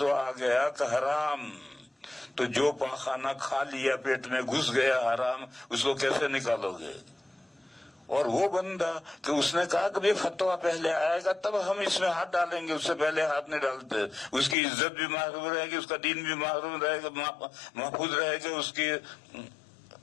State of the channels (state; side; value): drops out; right; at 14.6 s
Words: آ گیا کہ حرام، تو جو پاخانہ کھا لیا پیٹ میں گھس گیا حرام، اس کو کیسے نکالو گے؟ اور وہ بندہ کہ اس نے کہا کہ فتویٰ پہلے آئے گا تب ہم اس میں ہاتھ ڈالیں گے، اس سے پہلے ہاتھ نہیں ڈالتے، اس کی عزت بھی محفوظ رہے گی، اس کا دین بھی محفوظ رہے گا، اس کی